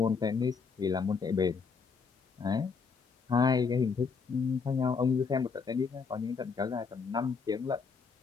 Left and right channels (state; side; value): quieter; right; 5.3 dB